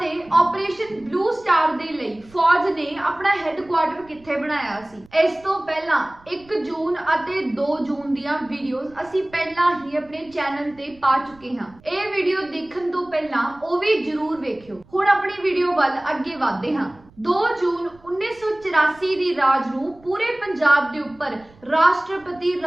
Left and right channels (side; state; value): right; noise; rumble, 27 dB below the sound